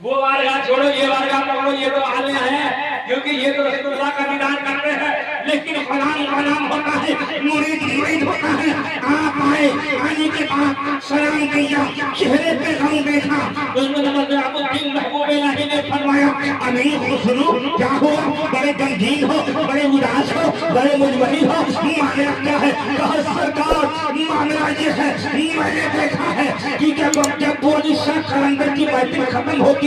وہ بارگاہ چھوڑو یہ بارگاہ پکڑو، یہ تو عالیہ ہے کیونکہ یہ تو رسول اللہ کا دیدار کرتے ہیں، لیکن غلام غلام ہوتا ہے، مرید مرید ہوتا ہے۔ آپ آئے، آنے کے بعد سلام کیا، چہرے پہ غم دیکھا، نظام الدین محبوب الہی نے فرمایا امیر خسرو کیا ہوا؟ بڑے غمگین ہو، بڑے اداس ہو، بڑے مجبری ہو، معاملہ کیا ہے؟ کہا سرکار معاملہ یہ ہے میں نے دیکھا ہے کہ جب ابو علی شاہ قلندر کی محفل ختم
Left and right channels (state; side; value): identical; both; correlation 1.00